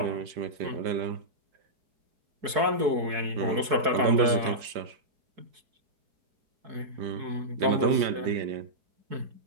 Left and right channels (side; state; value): left; late; 4.7 ms